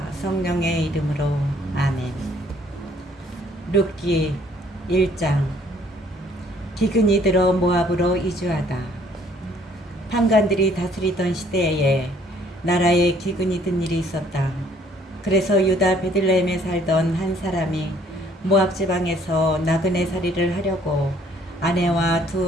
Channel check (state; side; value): normal; both; correlation 0.62